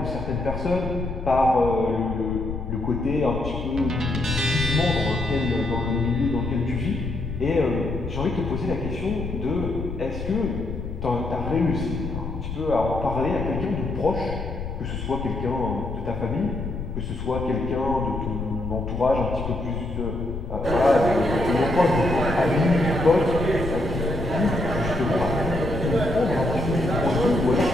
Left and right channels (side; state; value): left; noise; rumble, 7 dB below the sound